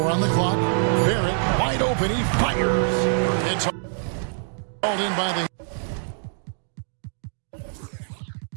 on the clock. Barrett wide open. He fires. It's hauled in by the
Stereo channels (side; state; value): left; silent; digital silence